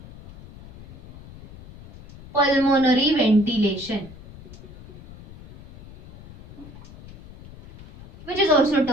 pulmonary ventilation, which is also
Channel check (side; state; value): left; noise; rumble, 19 dB below the sound